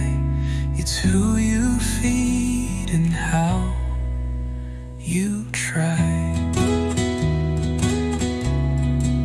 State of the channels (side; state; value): both; identical; correlation 1.00